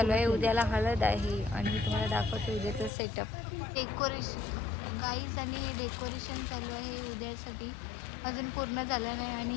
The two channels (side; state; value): right; drops out; at 2.9 s